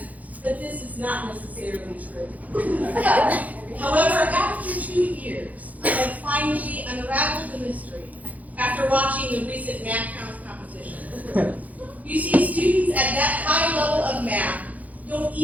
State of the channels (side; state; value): left; late; 0.076 ms